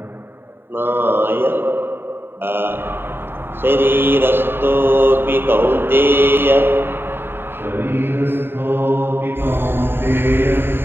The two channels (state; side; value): late; left; 0.11 ms